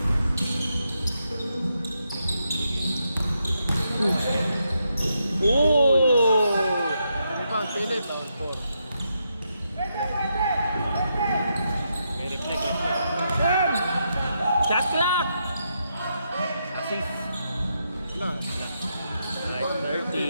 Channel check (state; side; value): inverted; both; correlation -0.82